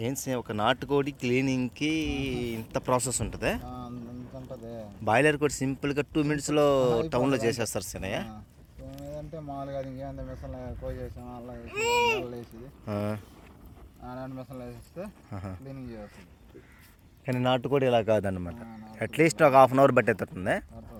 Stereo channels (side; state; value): both; identical; correlation 1.00